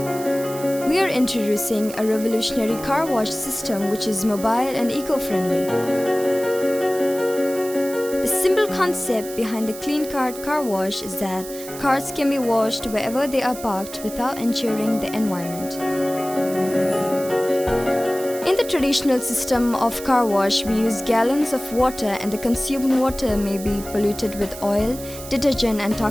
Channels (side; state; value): right; noise; hiss, 13 dB below the sound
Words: We are introducing a revolutionary car wash system which is mobile and eco-friendly. The simple concept behind the CleanCart car wash is that cars can be washed wherever they are parked without injuring the environment. In the traditional system of car wash, we use gallons of water and the consumed water may be polluted with oil, detergent and